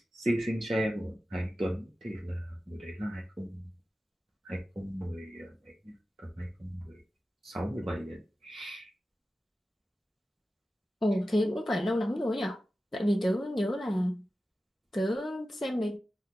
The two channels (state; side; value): normal; both; correlation 0.94